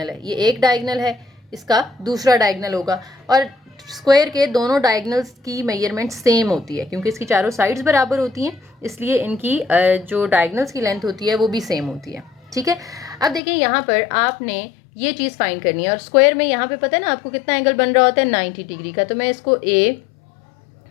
है, ये एक डायगनल है, इसका दूसरा डायगनल होगा। और स्क्वायर के दोनों डायगनल्स की मेजरमेंट सेम होती है, क्योंकि इसकी चारों साइड्स बराबर होती हैं, इसलिए इनकी जो डायगनल्स की लेंथ होती है वो भी सेम होती है, ठीक है। अब देखिए यहाँ पर आपने ये चीज़ फाइंड करनी है, और स्क्वायर में यहाँ पे पता है ना आपको कितना एंगल बन रहा होता है 90 डिग्री का। तो मैं इसको A,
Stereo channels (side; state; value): right; drops out; at 13.4 s